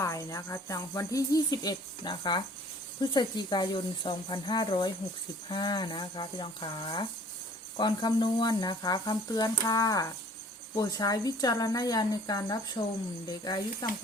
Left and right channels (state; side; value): normal; both; correlation 0.53